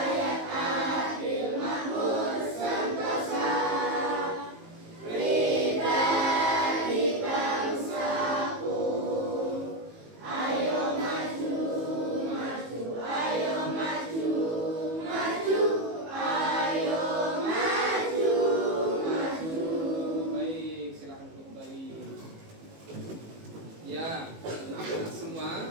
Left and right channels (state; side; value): late; left; 18 ms